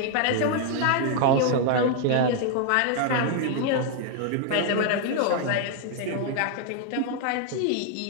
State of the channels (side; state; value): both; different; correlation 0.00